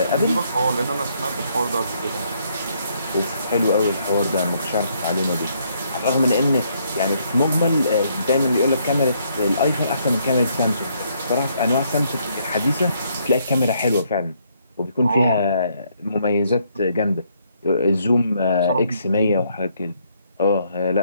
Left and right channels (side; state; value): both; inverted; correlation -0.71